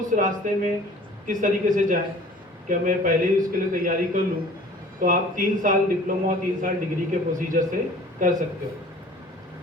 रास्ते में किस तरीके से जाएं, क्या मैं पहले ही उसके लिए तैयारी कर लूँ, तो आप 3 साल डिप्लोमा और 3 साल डिग्री के प्रोसीजर से कर सकते हो।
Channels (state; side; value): normal; both; correlation 0.47